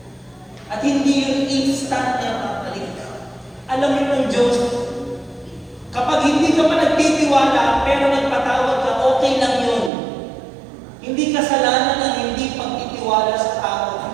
At hindi yung instant na mapalik ka. Alam mo ng Diyos, kapag hindi ka pa nagtitiwala, pero nagpatawad ka, okay lang yun. Hindi kasalanan ang hindi pagtitiwala sa tao.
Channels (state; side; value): drops out; left; at 9.9 s